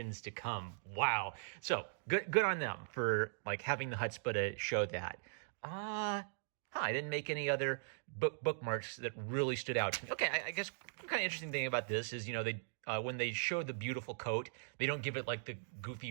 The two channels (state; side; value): silent; left; digital silence